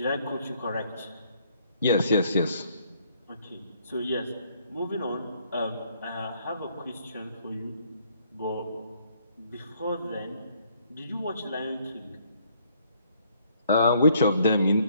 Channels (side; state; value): both; inverted; correlation -0.66